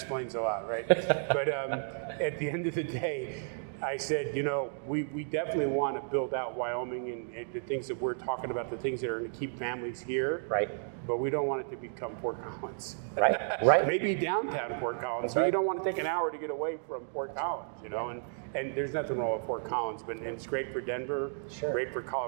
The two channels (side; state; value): left; silent; digital silence